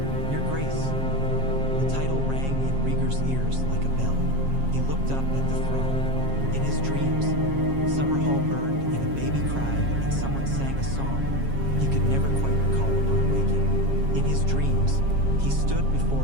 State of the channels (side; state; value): left; late; 7.4 ms